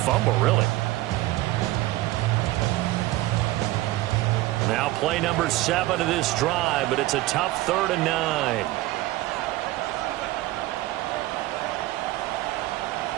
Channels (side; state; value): left; quieter; 17.6 dB